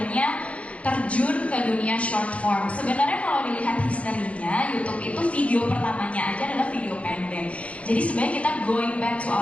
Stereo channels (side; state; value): right; late; 0.064 ms